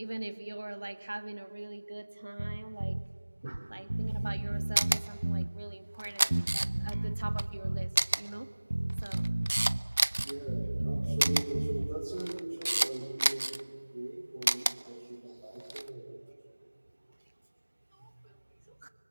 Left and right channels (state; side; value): inverted; both; correlation -1.00